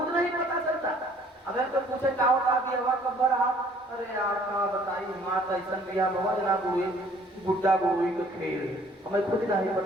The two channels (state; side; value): normal; both; correlation 0.58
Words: नहीं पता चलता। अगर तो पूछे क्या होता भी हवा कब रहा, अरे यार कहा बताई माँ ऐसा बिया भवा जना गुरुई बुड्ढा गुरुई का खेल, हमें खुद नहीं